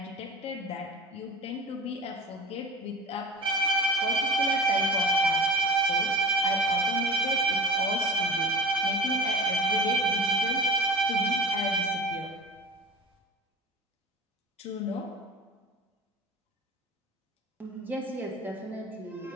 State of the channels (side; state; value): both; normal; correlation 0.36